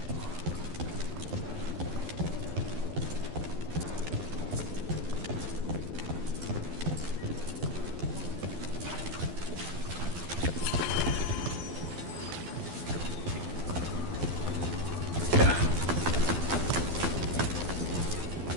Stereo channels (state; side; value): late; left; 12 ms